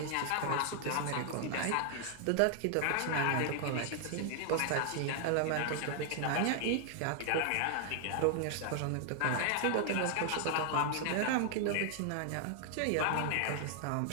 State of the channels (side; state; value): both; different; correlation 0.00